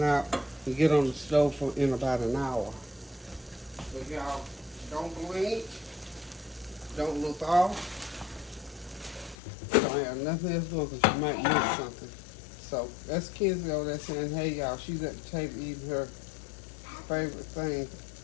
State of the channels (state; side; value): drops out; right; at 9.3 s